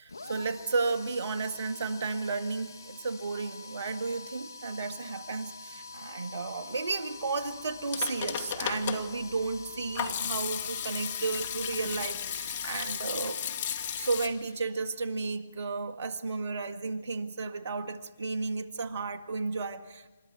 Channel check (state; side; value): inverted; both; correlation -0.74